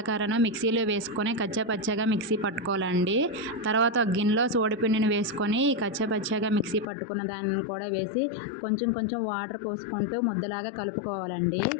మిక్సీలో వేసుకొని కచ్చాపచ్చాగా మిక్సీ పట్టుకోవాలండి. తర్వాత ఒక గిన్నెలో సోడిపిండిని వేసుకొని కచ్చాపచ్చాగా మిక్సీ పట్టుకున్న దాన్ని కూడా వేసి కొంచెం కొంచెం వాటర్ పోసుకుంటూ ముద్దలాగా కలుపుకోవాలండి.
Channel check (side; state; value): right; drops out; at 6.9 s